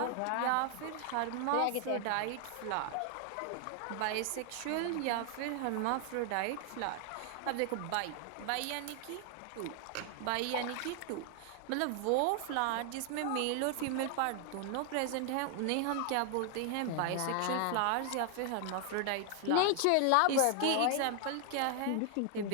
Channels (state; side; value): different; both; correlation 0.00